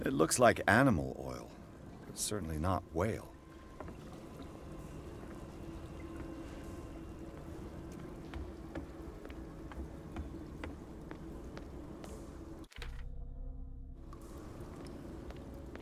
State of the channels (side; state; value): both; identical; correlation 1.00